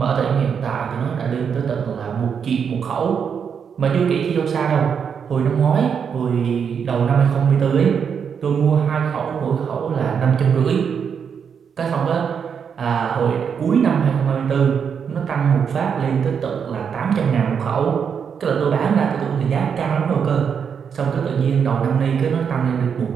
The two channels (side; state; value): left; quieter; 7.0 dB